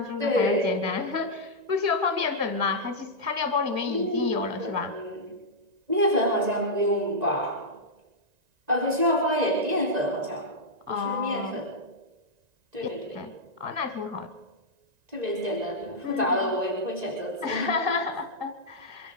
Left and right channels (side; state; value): left; late; 2.0 ms